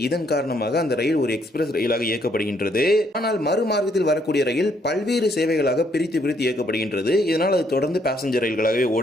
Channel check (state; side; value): normal; both; correlation 0.70